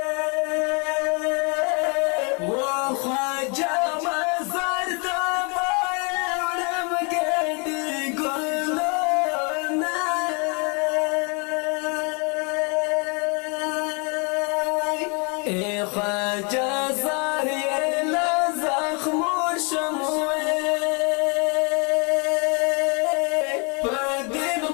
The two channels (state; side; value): quieter; right; 33.6 dB